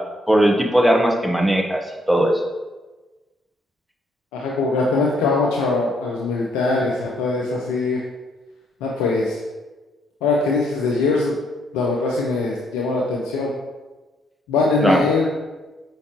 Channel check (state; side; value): normal; both; correlation 0.70